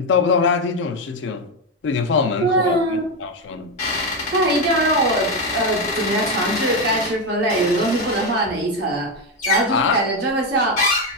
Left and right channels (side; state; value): both; normal; correlation 0.10